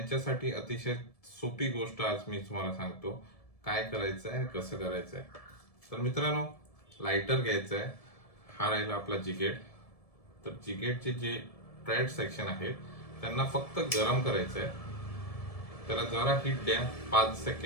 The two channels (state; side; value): late; right; 1.7 ms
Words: अतिशय सोपी गोष्ट आज मी तुम्हाला सांगतो काय करायचं आहे आणि कसं करायचं आहे. तर मित्रांनो, लायटर घ्यायचं आहे. हा राहिला आपला जिगेड. तर जिगेडचे जे ट्रॅड सेक्शन आहेत त्यांना फक्त गरम करायचं आहे. त्याला जरा हीट द्या, 5